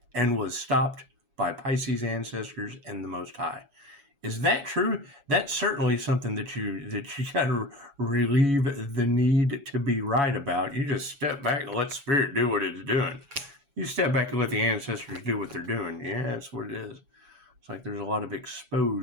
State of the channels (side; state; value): left; late; 7.1 ms